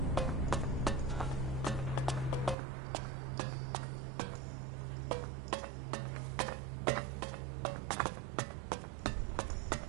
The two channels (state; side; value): drops out; left; at 2.6 s